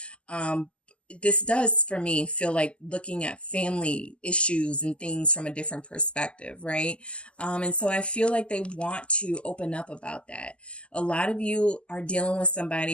This does, for me, feel like looking at family issues and things from a different perspective, right? And so I feel like they want to open up about that. A lot of you are dealing with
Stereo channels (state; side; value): late; right; 0.054 ms